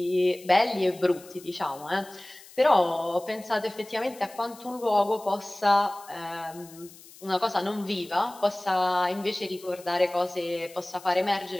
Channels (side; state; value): left; noise; hiss, 21 dB below the sound